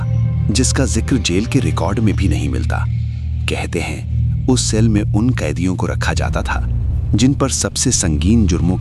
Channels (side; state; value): both; identical; correlation 1.00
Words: जिसका जिक्र जेल के रिकॉर्ड में भी नहीं मिलता। कहते हैं उस सेल में उन कैदियों को रखा जाता था जिन पर सबसे संगीन जुर्मों